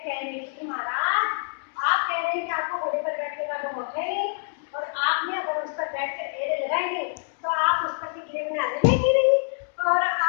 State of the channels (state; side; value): silent; right; digital silence